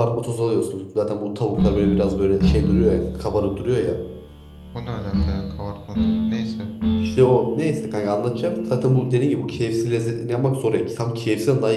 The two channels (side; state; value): both; identical; correlation 1.00